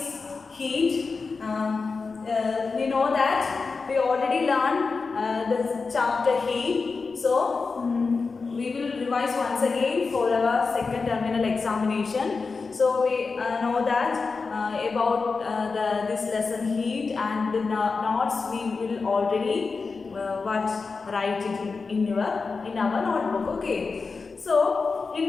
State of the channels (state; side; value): quieter; right; 4.5 dB